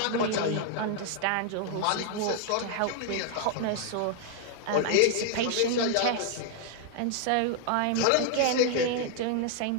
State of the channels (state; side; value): different; both; correlation 0.00